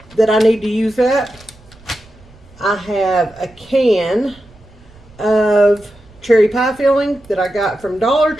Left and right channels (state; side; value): noise; right; rumble, 26 dB below the sound